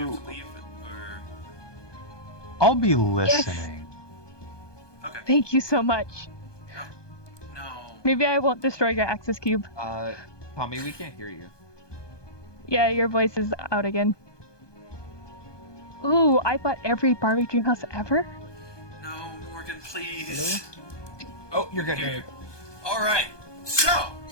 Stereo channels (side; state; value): right; late; 1.2 ms